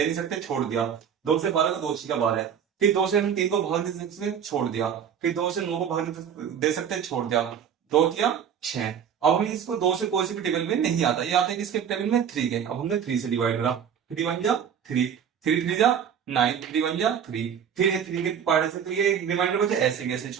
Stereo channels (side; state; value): left; quieter; 8.1 dB